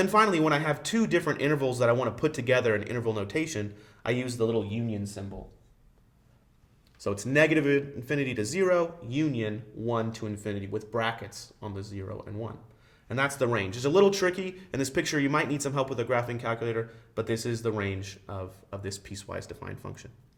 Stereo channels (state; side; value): identical; both; correlation 1.00